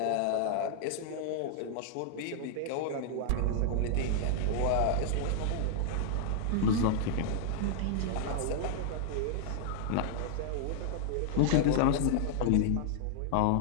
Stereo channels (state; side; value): different; both; correlation -0.01